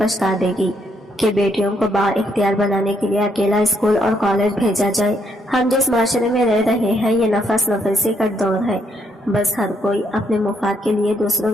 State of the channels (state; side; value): normal; both; correlation 0.74